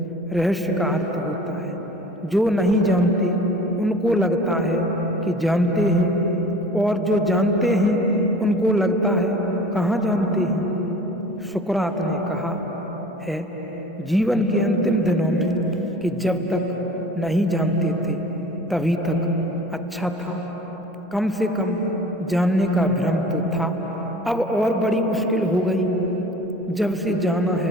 रहस्य का अर्थ होता है जो नहीं जानते उनको लगता है कि जानते हैं, और जो जानते हैं उनको लगता है कहाँ जानते हैं। सुकरात ने कहा है जीवन के अंतिम दिनों में कि जब तक नहीं जानते थे तभी तक अच्छा था, कम से कम जानने का भ्रम तो था। अब और बड़ी मुश्किल हो गई, जब से जाना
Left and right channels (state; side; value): normal; both; correlation 0.44